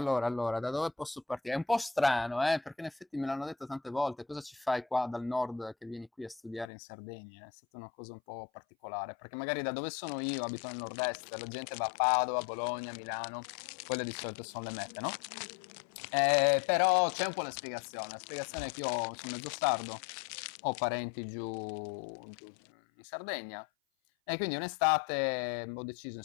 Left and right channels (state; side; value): drops out; right; at 6.7 s